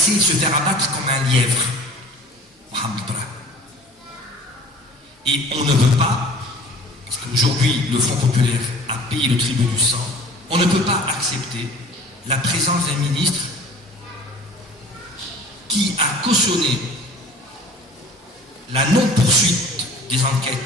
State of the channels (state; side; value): normal; both; correlation 0.46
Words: se faire abattre comme un lièvre, Mohamed Brahim. Et on ne veut pas, parce qu'aujourd'hui le Front populaire a payé le tribut du sang, on ne peut pas accepter la présence d'un ministre qui a cautionné la non-poursuite des